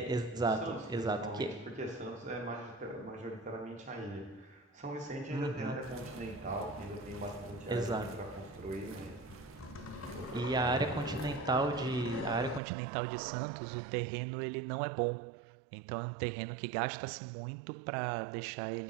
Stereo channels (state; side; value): drops out; left; at 12.6 s